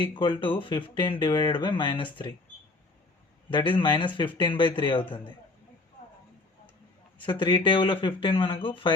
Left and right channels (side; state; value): right; quieter; 3.2 dB